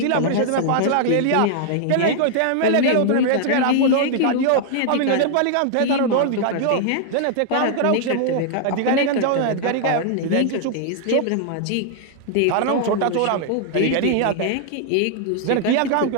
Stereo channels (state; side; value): different; both; correlation -0.01